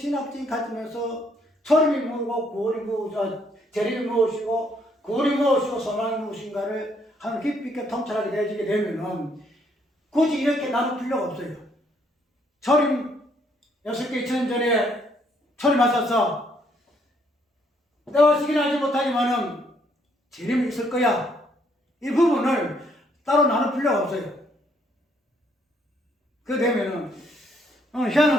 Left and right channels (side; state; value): both; normal; correlation 0.69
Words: 관점에서 초림이 뭐고 구원이 무엇이고 재림이 무엇이고 구원이 무엇이고 소망이 무엇인가를 한 깊이 있게 통찰하게 되어지게 되면은 굳이 이렇게 나눌 필요가 없어요. 초림 6개 2000년 전에 초림하셔서 때와 시기는 알지 못하지만은 재림이 있을 거야. 이 부분을 따로 나눌 필요가 없어요. 그 되면은